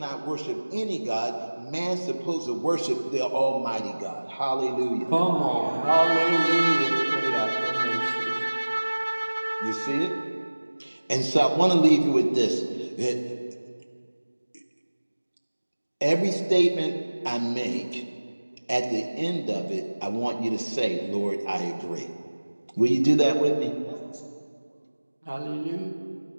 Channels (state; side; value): inverted; both; correlation -1.00